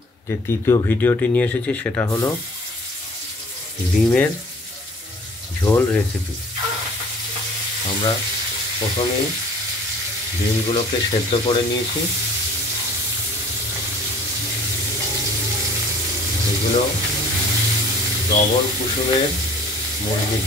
যে তৃতীয় ভিডিওটি নিয়ে এসেছি সেটা হলো ডিমের ঝোল রেসিপি। আমরা প্রথমেই ডিমগুলোকে সেদ্ধ করে নিয়েছি। এগুলো ডবল কুসুমের মুরগির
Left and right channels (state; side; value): normal; both; correlation 0.50